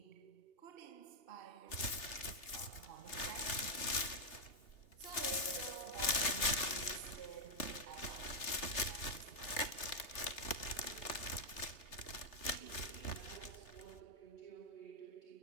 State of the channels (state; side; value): late; right; 2.8 ms